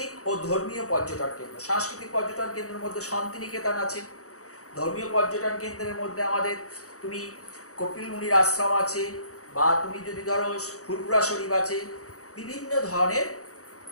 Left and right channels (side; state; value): right; late; 0.65 ms